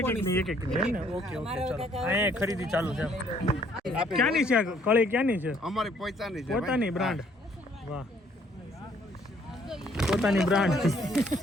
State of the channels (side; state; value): both; normal; correlation 0.64